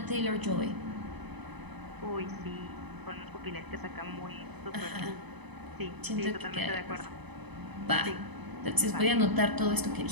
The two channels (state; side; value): late; left; 0.99 ms